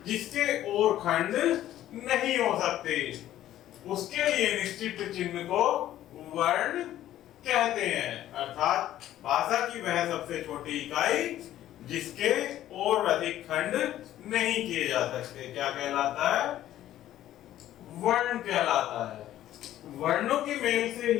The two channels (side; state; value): right; quieter; 12.9 dB